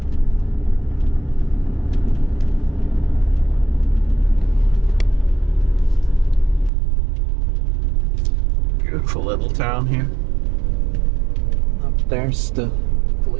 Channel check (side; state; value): left; drops out; at 6.7 s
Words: Beautiful little town here. Up there's the